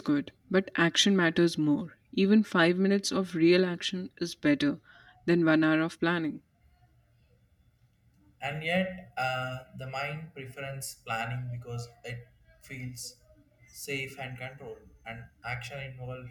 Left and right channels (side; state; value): both; identical; correlation 1.00